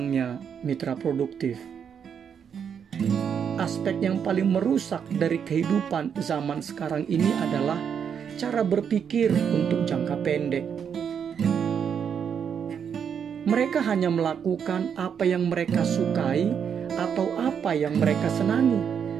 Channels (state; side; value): quieter; left; 7.6 dB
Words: mitra produktif, aspek yang paling merusak dari kehidupan zaman sekarang ini adalah cara berpikir untuk jangka pendek. Mereka hanya melakukan apa yang mereka sukai atau apa yang mereka senangi,